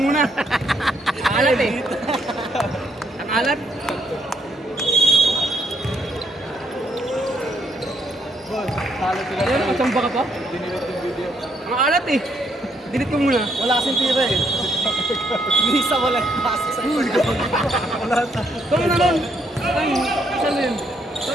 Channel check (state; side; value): normal; both; correlation 0.73